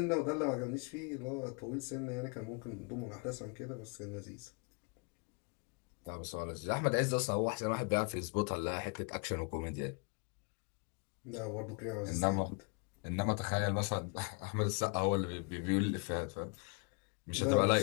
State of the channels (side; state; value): right; quieter; 35.2 dB